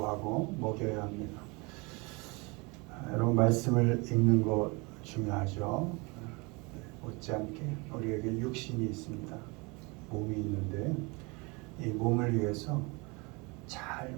먹여야 합니다. 여러분 말씀을 읽는 것 중요하죠. 못지않게 우리에게 육신이 있습니다. 몸이 있는데 이 몸을 위해서 잘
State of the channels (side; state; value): left; quieter; 27.8 dB